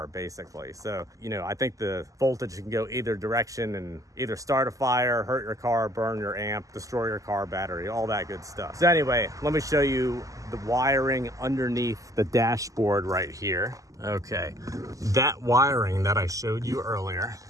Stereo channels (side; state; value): left; late; 0.16 ms